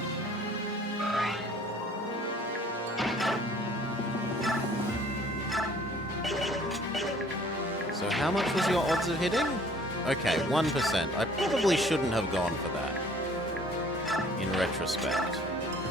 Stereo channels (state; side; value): normal; both; correlation 0.54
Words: So how much was your odds of hitting? Okay, 1%. I probably shouldn't have gone for that, in retrospect.